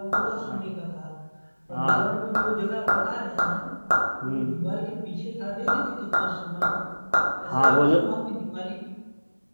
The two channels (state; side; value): inverted; both; correlation -1.00